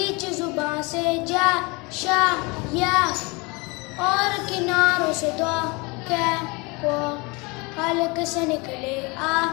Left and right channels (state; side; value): quieter; right; 27.3 dB